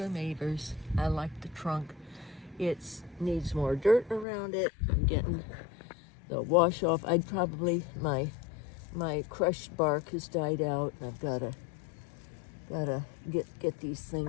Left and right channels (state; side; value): drops out; right; at 4.2 s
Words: Mavers. I like the trunk. It needs more dirt around it. I'm getting the wash off. I'd probably, my crushed bark has died out, and I've gotta get these